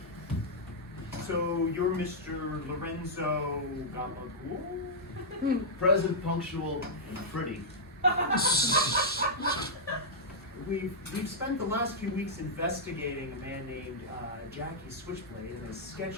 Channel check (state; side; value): normal; both; correlation -0.09